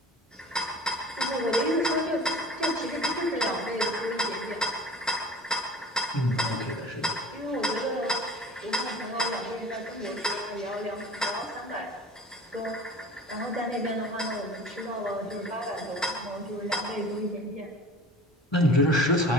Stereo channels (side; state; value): both; normal; correlation 0.42